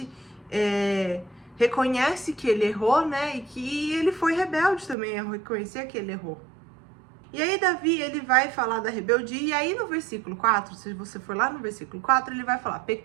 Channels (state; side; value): drops out; left; at 5.0 s